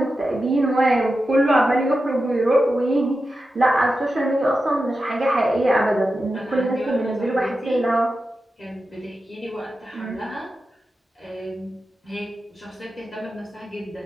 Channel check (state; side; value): normal; both; correlation 0.91